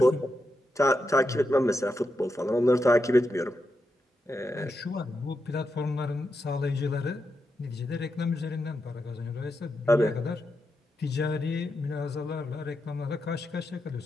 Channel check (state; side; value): normal; both; correlation 0.86